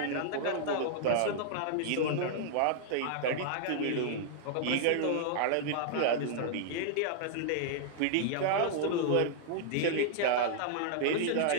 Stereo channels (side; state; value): both; different; correlation -0.01